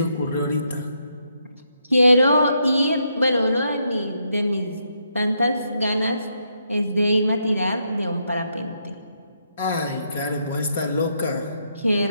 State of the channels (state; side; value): inverted; both; correlation -0.78